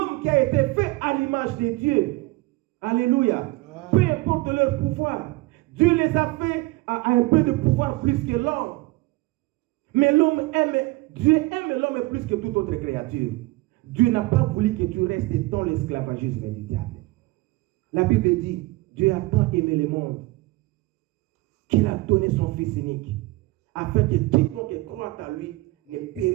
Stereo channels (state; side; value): quieter; left; 21.1 dB